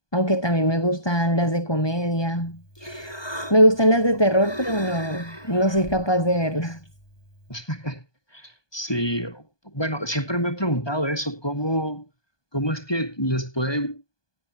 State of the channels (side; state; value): right; late; 1.2 ms